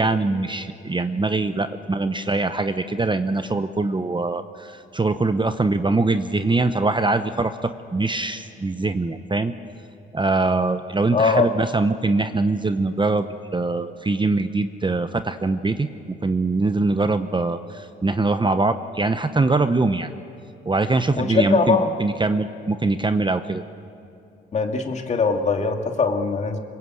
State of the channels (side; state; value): both; normal; correlation 0.65